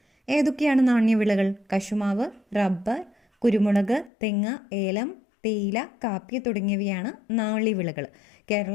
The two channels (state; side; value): drops out; right; at 4.1 s